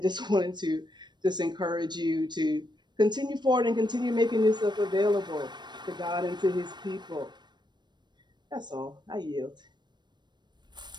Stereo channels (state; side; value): late; left; 0.21 ms